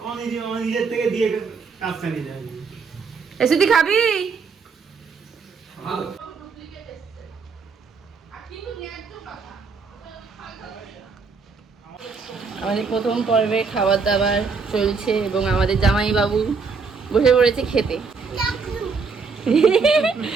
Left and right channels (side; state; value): left; quieter; 5.0 dB